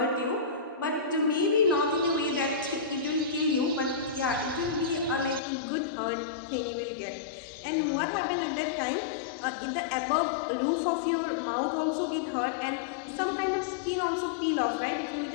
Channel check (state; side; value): drops out; right; at 5.4 s